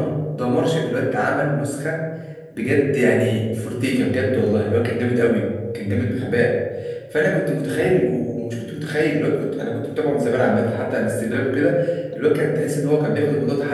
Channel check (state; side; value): identical; both; correlation 1.00